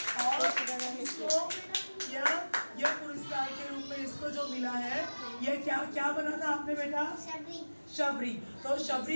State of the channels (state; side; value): inverted; both; correlation -1.00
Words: और इसको यह पुरस्कार के रूप में इसको जो मिला है, यह क्या बना था आपने बेटा? शबरी। तो